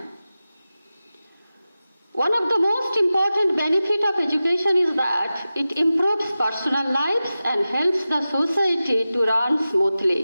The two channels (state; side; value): inverted; both; correlation -0.94